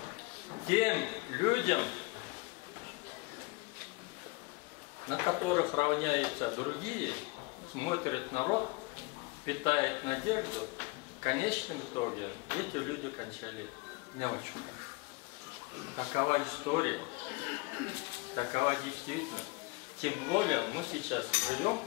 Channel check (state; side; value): quieter; right; 25.0 dB